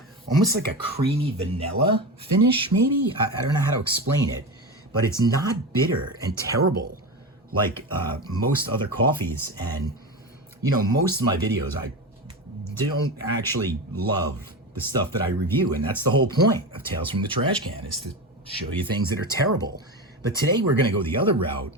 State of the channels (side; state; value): both; normal; correlation 0.22